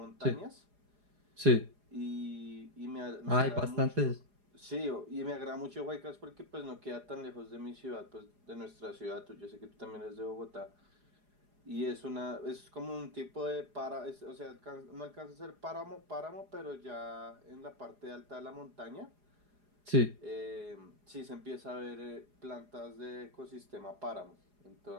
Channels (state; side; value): late; left; 4.9 ms